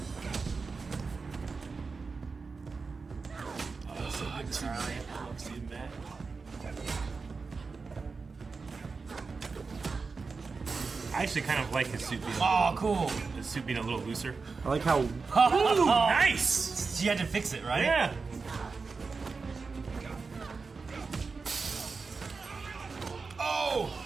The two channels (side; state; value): left; quieter; 4.5 dB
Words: I actually kind of like his suit being Cool. his suit being a little looser. I like how Ooh, nice! You had to fix it, right? Yeah. Oh!